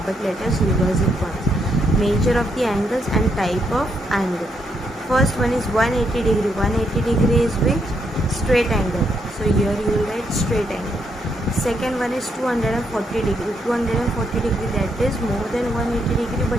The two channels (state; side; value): normal; both; correlation 0.76